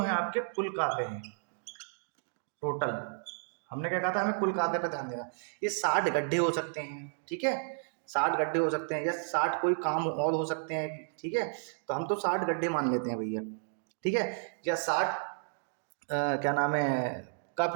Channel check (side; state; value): left; silent; digital silence